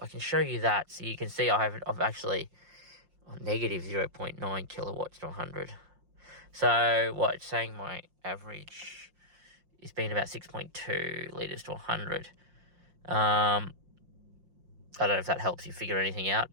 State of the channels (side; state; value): left; late; 5.7 ms